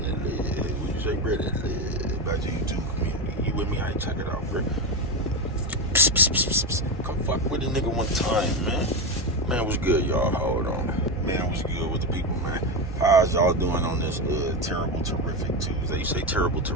that leg. What you say, bro? That leg about your YouTube community. You with me? I ain't check it out, bro. Psst, psst, psst, psst, psst. Come fuck with a nigga one time, man. Man, what's good, y'all? Hold on. Man, what's good with the people, man? How's y'all doing on this terrible, terrific Tuesday? You say terrible,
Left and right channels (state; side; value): normal; both; correlation 0.14